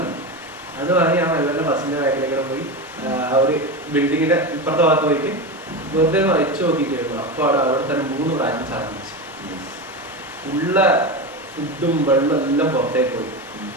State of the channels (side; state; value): both; normal; correlation 0.20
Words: ഞാൻ മെല്ലനെ ബസ്സിന്റെ ബാക്കിലേക്കൂടെ പോയി ആ ഒരു ബിൽഡിങ്ങിന്റെ ഇപ്പുറത്തെ ഭാഗത്ത് പോയിട്ട് വെറുതെ വെച്ച് നോക്കിയിട്ടായിരുന്നു. അപ്പൊ അവിടെ തന്നെ 3 പ്രാവശ്യം സാധിച്ചു. ഉള്ള ഫുഡും വെള്ളം എല്ലാം പുറത്തേക്ക് പോയി.